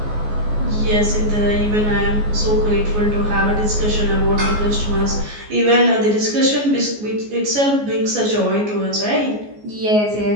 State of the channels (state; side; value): late; left; 14 ms